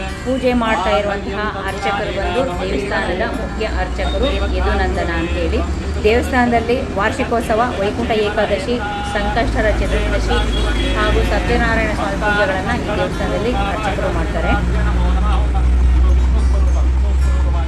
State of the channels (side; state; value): both; identical; correlation 1.00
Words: ಪೂಜೆ ಮಾಡ್ತಾ ಇರುವಂತಹ ಅರ್ಚಕರು ಬಂದು ದೇವಸ್ಥಾನದ ಮುಖ್ಯ ಅರ್ಚಕರು ಯದುನಂದನ ಅಂತೇಳಿ. ದೇವಸ್ಥಾನದಲ್ಲಿ ವಾರ್ಷಿಕೋತ್ಸವ, ವೈಕುಂಠ ಏಕಾದಶಿ, ಸಂಕಷ್ಟರ ಚತುರ್ದಶಿ ಹಾಗೂ ಸತ್ಯನಾರಾಯಣ ಸ್ವಾಮಿ ಪೂಜೆಗಳನ್ನು ಈ ದೇವಸ್ಥಾನದಲ್ಲಿ ಅರ್ಚಕರು ಮಾಡ್ತಾರೆ.